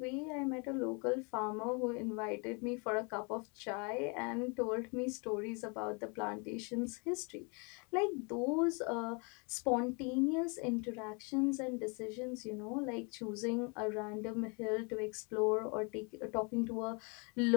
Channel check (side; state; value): right; quieter; 33.3 dB